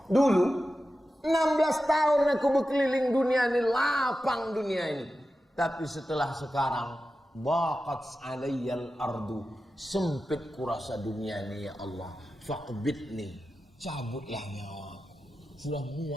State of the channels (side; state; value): both; normal; correlation 0.92